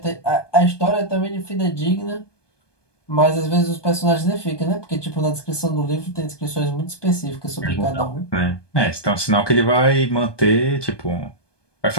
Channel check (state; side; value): late; right; 1.2 ms